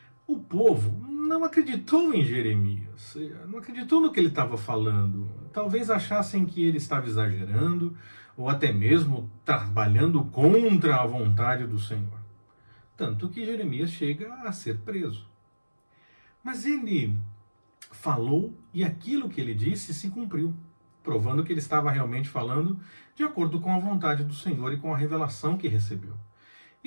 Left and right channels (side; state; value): both; inverted; correlation -1.00